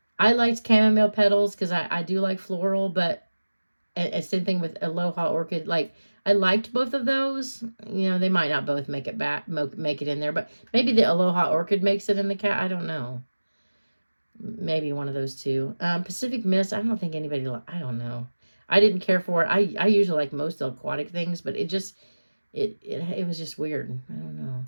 liked chamomile petals because I do like floral, but same thing with Aloha Orchid. Like, I liked both of those. They might not both make it make it in there, but maybe the Aloha Orchid makes it in the cat. I don't know. Maybe one of those two. Pacific Mist, I don't think anybody, I don't know. I didn't care for it. I usually like most aquatic things, but it just, it was just weird. I don't know.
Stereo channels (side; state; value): both; inverted; correlation -1.00